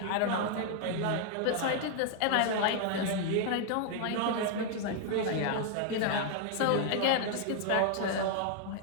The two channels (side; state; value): both; different; correlation 0.00